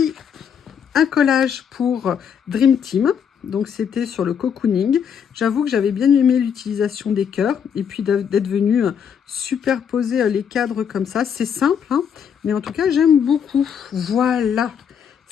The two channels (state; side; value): quieter; right; 7.6 dB